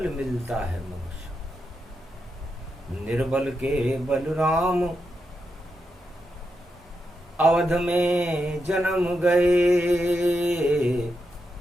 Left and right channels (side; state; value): both; normal; correlation 0.85